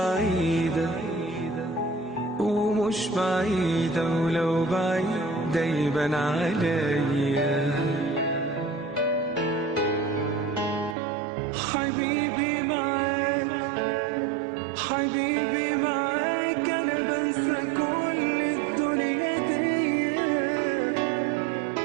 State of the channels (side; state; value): left; drops out; at 11.0 s